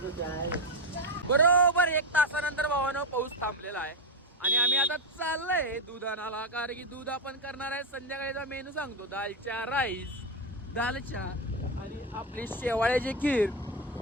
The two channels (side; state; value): both; normal; correlation 0.10